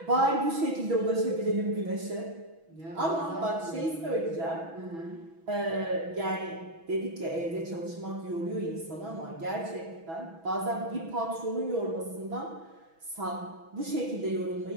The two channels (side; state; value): left; late; 6.1 ms